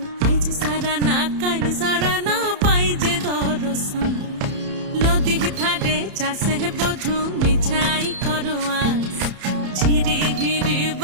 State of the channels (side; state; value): left; late; 31 ms